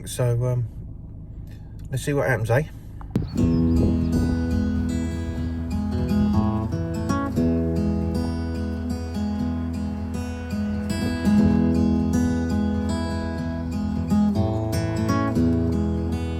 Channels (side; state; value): both; identical; correlation 1.00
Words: So let's see what happens, eh?